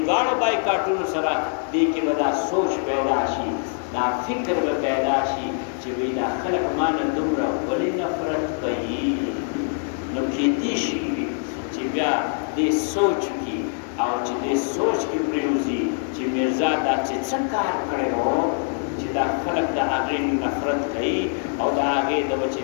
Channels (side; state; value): right; silent; 60 dB below the other